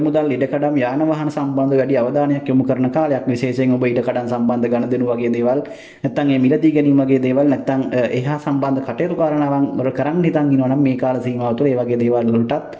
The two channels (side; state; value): both; identical; correlation 1.00